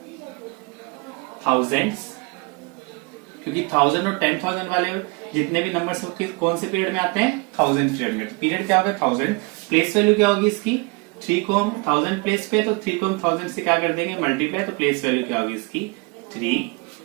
थाउजेंड्स, क्योंकि 1000 और 10,000 वाले जितने भी नंबर्स कौन से पीरियड में आते हैं? थाउजेंड पीरियड में। तो पीरियड क्या होगा? 1000। प्लेस वैल्यू क्या होगी इसकी? 3 को हम 1000 प्लेस पे, तो 3 को हम 1000 से क्या कर देंगे मल्टीप्लाई, तो प्लेस वैल्यू क्या होगी इसकी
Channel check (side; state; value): left; quieter; 28.8 dB